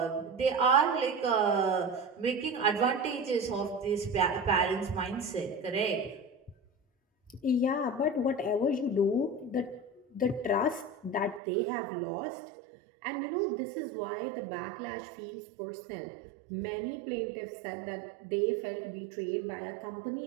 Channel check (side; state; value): left; drops out; at 11.4 s